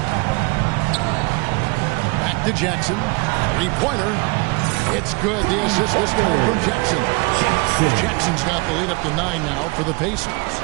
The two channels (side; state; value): left; quieter; 28.0 dB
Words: Back to Jackson. 3-pointer. It's good. The assist this time from Jackson. Jackson's got the lead up to 9 now for the Pacers.